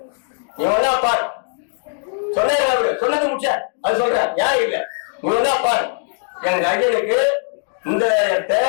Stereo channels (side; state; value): right; silent; 66 dB below the other